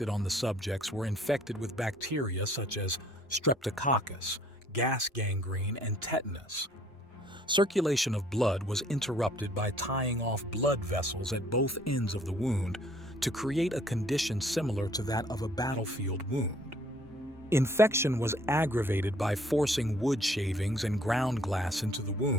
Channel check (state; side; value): normal; both; correlation 0.60